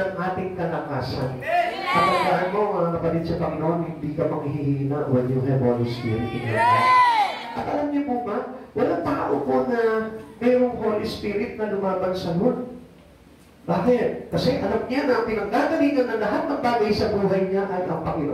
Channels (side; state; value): both; identical; correlation 1.00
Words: ating kalakasan. Kapag mo, mga kapatid sa Panginoon, hindi ka manghihina when you have Holy Spirit in your life. At alam niyo po ba, walang tao po na mayroong Holy Spirit na lumaban sa Lord. Bakit? Kasi alam niya na ang pinanggagalingan ng lahat ng bagay sa buhay niya ay ang